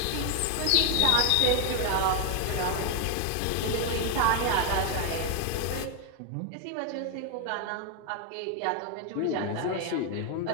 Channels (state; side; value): different; both; correlation 0.01